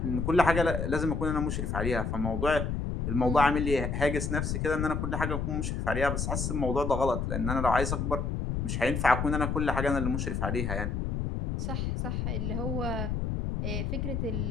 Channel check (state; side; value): noise; left; rumble, 1 dB below the sound